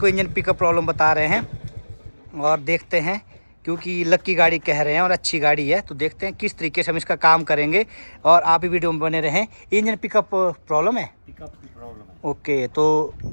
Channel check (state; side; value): inverted; both; correlation -1.00